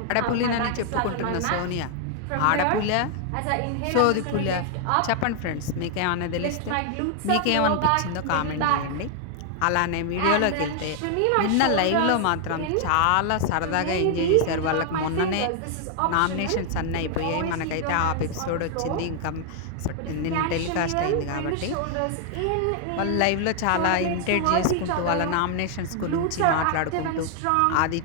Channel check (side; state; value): both; different; correlation 0.00